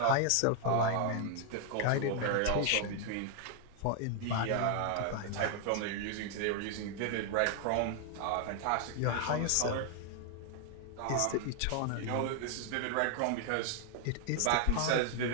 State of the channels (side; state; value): both; different; correlation 0.00